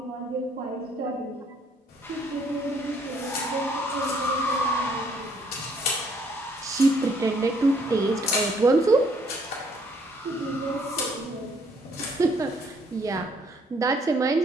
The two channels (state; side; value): normal; both; correlation 0.65